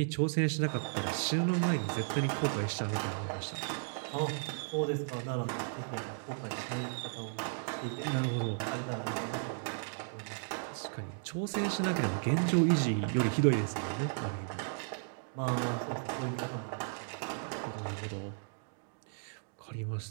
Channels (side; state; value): left; silent; digital silence